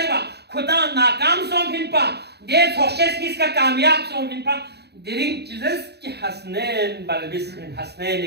خدا ناکام سون پھن پا دے سوشیس کس کا کامیاب سون پھن پا درنگ چیزز کی حسنین بلبس پھن حسنین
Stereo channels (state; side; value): late; left; 0.48 ms